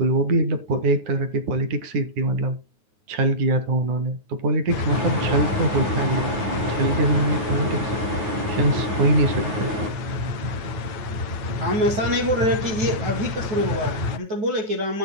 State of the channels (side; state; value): left; late; 9.4 ms